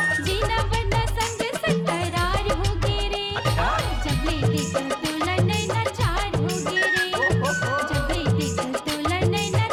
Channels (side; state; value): both; identical; correlation 1.00